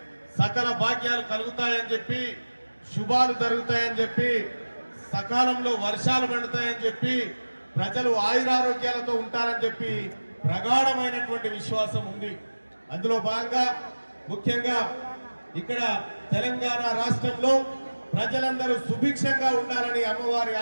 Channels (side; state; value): both; inverted; correlation -1.00